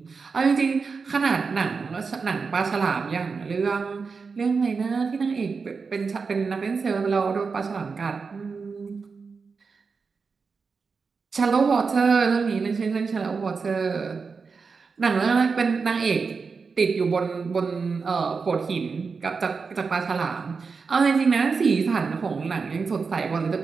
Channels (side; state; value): left; quieter; 5.0 dB